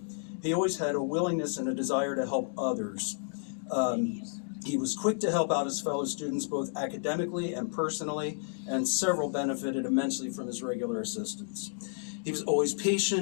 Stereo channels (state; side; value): silent; right; digital silence